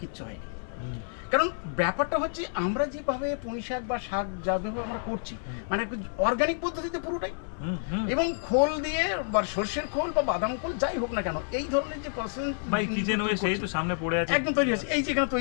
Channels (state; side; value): silent; right; 59 dB below the other